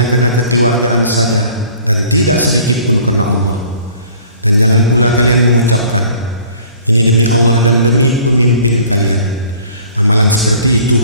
karena kekeluargaan saja dan tidak sedikit pun karena Allah. Dan jangan pula kalian mengucapkan ini demi Allah dan demi pemimpin kalian. Amalan seperti itu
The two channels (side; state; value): both; inverted; correlation -0.51